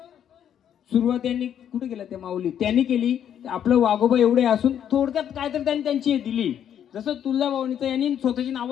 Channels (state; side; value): quieter; right; 9.5 dB